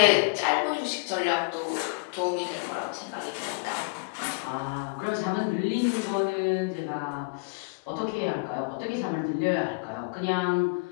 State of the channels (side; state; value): right; quieter; 31.9 dB